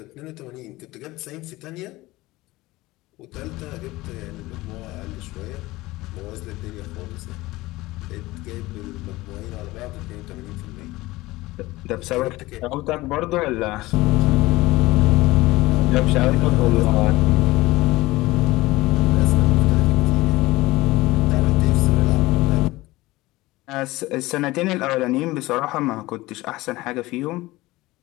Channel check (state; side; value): quieter; right; 19.4 dB